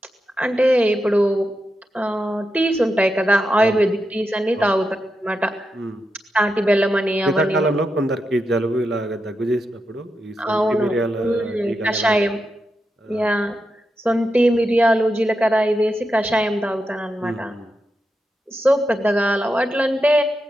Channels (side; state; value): both; normal; correlation 0.87